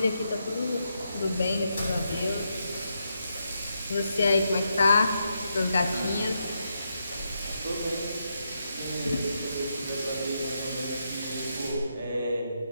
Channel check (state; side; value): inverted; both; correlation -0.82